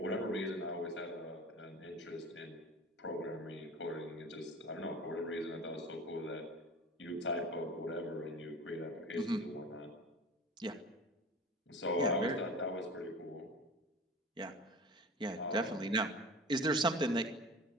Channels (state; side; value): normal; both; correlation 0.37